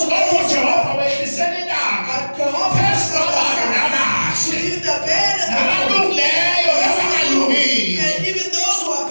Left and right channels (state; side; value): inverted; both; correlation -1.00